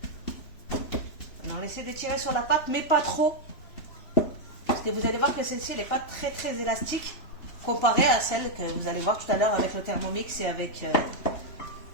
On essaie de tirer sur la pâte, mais pas trop. Parce que vous allez voir que celle-ci, elle n'est pas très très élastique. Comparée à celle que vous allez voir tout à l'heure avec le Thermomix et avec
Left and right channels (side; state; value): right; late; 2.9 ms